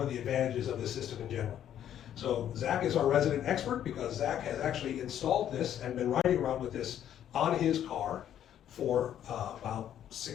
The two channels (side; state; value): right; quieter; 10.5 dB